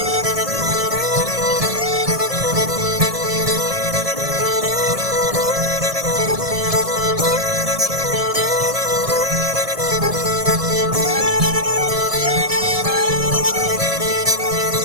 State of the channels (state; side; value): late; left; 1.7 ms